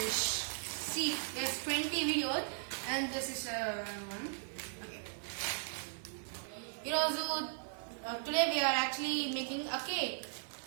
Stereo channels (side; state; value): left; silent; 53 dB below the other